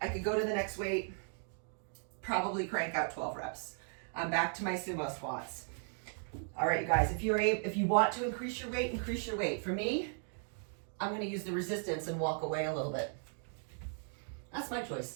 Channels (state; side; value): silent; left; 53 dB below the other